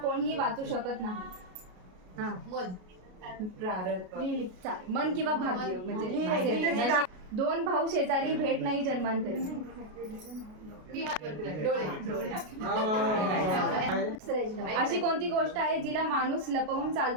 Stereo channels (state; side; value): late; left; 33 ms